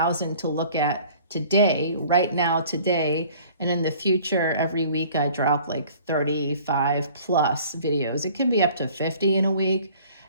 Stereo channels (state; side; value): inverted; both; correlation -0.51